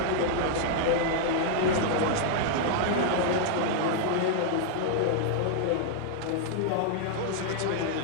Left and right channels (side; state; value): both; different; correlation -0.01